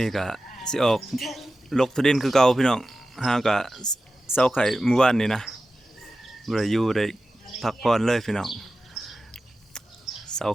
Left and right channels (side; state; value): both; normal; correlation 0.94